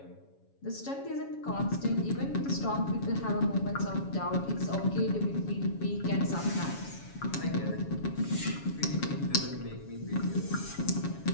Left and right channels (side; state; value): right; late; 7.2 ms